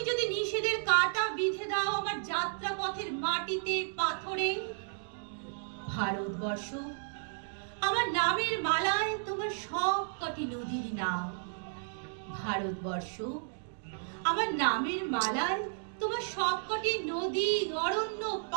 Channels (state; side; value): silent; left; digital silence